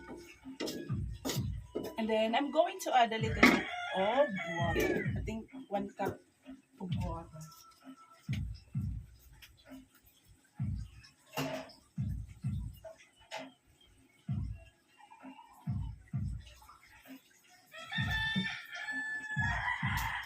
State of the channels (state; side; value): identical; both; correlation 1.00